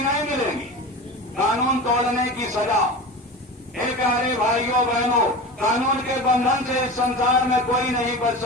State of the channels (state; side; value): normal; both; correlation 0.30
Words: नहीं मिलेगी? कानून तोड़ने की सजा। एक प्यारे भाइयों बहनों, कानून के बंधन से इस संसार में कोई नहीं बच